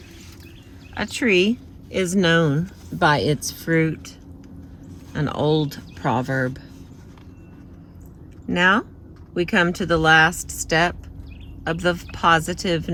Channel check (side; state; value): both; identical; correlation 1.00